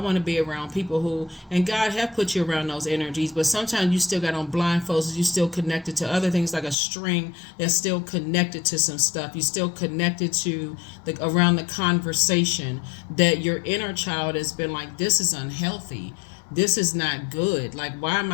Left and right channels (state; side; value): drops out; right; at 6.8 s